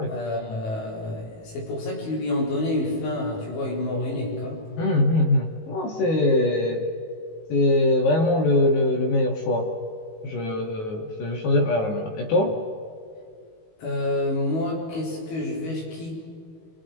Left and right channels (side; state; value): right; late; 19 ms